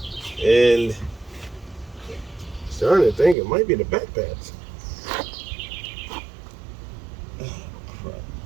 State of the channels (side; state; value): left; drops out; at 3.4 s